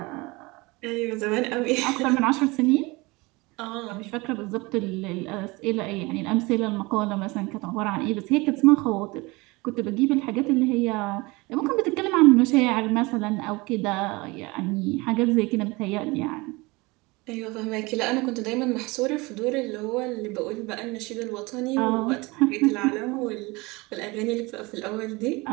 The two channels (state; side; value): quieter; left; 24.1 dB